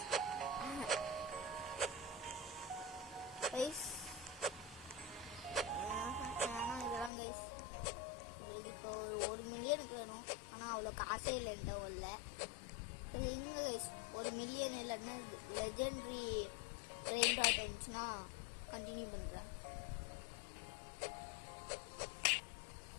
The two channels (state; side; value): drops out; right; at 7.1 s